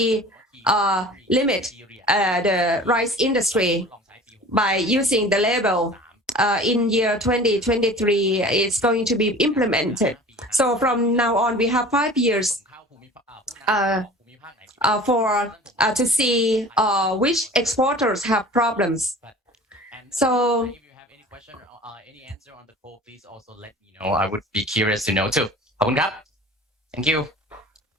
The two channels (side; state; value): both; normal; correlation 0.42